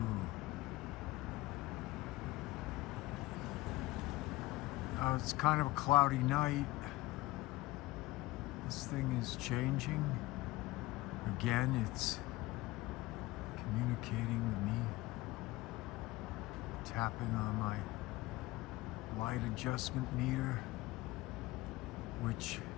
It's kind of a cloudy night. This thing is changing. Again, it's communicating with me. Tapping on my light adjustment meter, which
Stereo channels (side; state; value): right; quieter; 19.1 dB